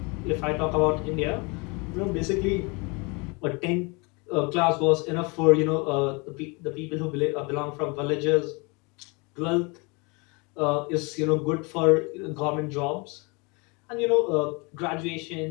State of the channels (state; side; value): quieter; right; 29.4 dB